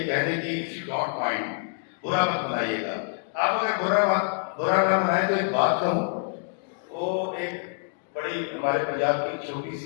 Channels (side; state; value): right; silent; 61 dB below the other